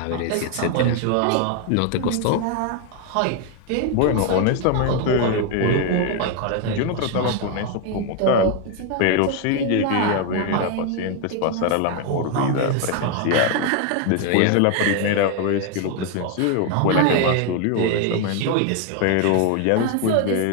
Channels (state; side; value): different; both; correlation 0.01